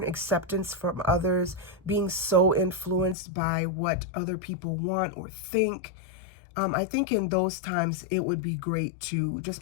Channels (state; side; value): drops out; right; at 3.2 s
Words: acceptance from others, being so influenced by what other people want or think, I think in those times it would be great to